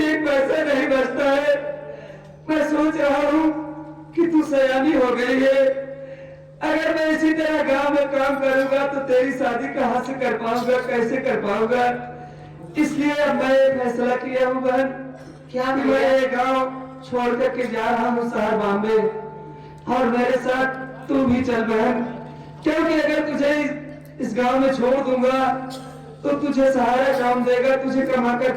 एक पैसा नहीं बचता है। मैं सोच रहा हूँ कि तू सयानी हो गई है, अगर मैं इसी तरह गांव में काम करूंगा तो तेरी शादी कहाँ से कर पाऊंगा, कैसे कर पाऊंगा? इसलिए अब मैं फैसला किया हूँ बहन, क्या मैं ये गांव छोड़ करके जा रहा हूँ शहर बॉम्बे, और मेरे साथ तू भी चल बहन, क्योंकि अगर तुझे इस गांव में छोड़ दूंगा तो तुझे सहारा कौन देगा, तुझे कमाकर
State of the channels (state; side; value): identical; both; correlation 1.00